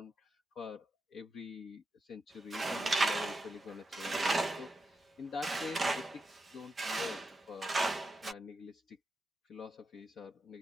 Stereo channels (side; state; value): both; normal; correlation 0.87